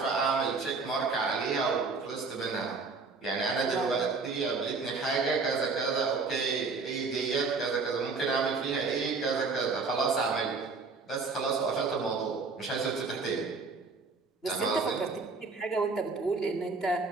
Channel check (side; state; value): left; quieter; 4.3 dB